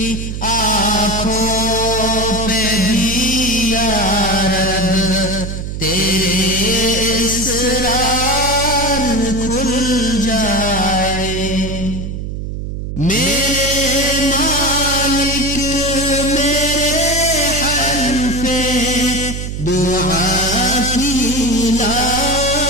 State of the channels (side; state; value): right; noise; hum, 6 dB below the sound